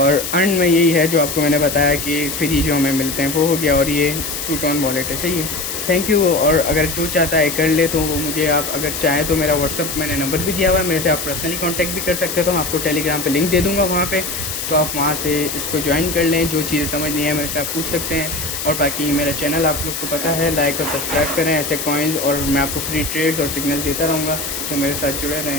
अर्न में यही है जो आपको मैंने बताया कि फ्री जो हमें मिलते हैं वो हो गया। और ये ट्रूटोन वॉलेट है। सही है। Thank you. और अगर जो चाहता है कर ले तो वो मुझे, आप अगर चाहें तो मेरा व्हाट्सअप मैंने नंबर भी दिया हुआ है, मेरे से आप पर्सनली कांटेक्ट भी कर सकते हो। तो मैं आपको टेलीग्राम पे लिंक दे दूँगा वहाँ पे, तो आप वहाँ से इसको ज्वाइन कर लें। जो चीज़ें समझ नहीं है मेरे से आप पूछ सकते हैं। और बाकी मेरा चैनल आप लोग को पता है, लाइक और सब्सक्राइब करें ऐसे कॉइन्स, और मैं आपको फ्री ट्रेड्स और सिग्नल देता रहूँगा। तो मेरे साथ जुड़े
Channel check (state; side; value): noise; left; hiss, 5 dB below the sound